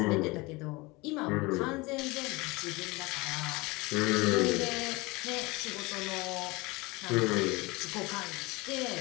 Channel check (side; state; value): right; quieter; 24.1 dB